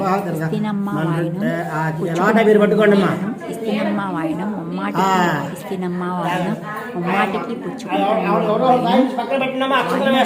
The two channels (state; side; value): identical; both; correlation 1.00